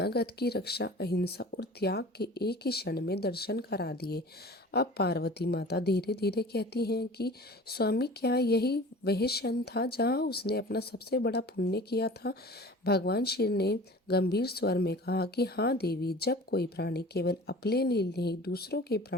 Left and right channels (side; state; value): both; normal; correlation 0.42